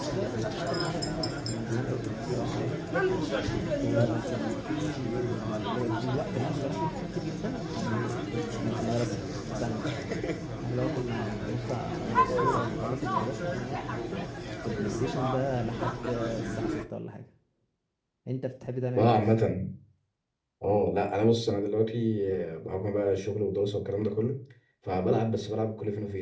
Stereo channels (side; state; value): both; identical; correlation 1.00